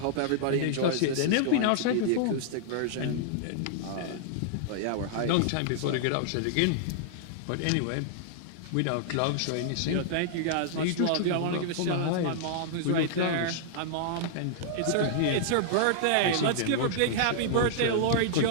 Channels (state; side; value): different; both; correlation -0.01